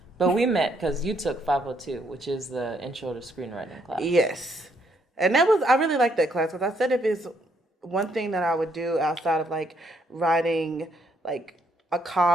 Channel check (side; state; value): both; normal; correlation 0.71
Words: But we met because you took 502, which is the intro to screenwriting class. Yes. And I really liked that class, because I said if it's one thing that I would do outside of like writing like a